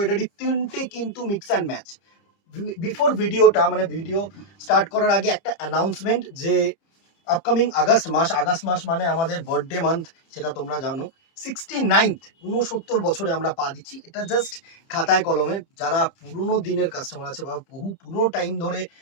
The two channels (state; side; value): late; right; 30 ms